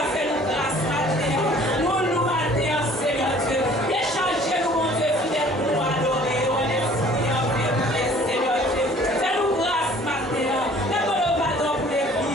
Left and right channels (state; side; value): normal; both; correlation 0.53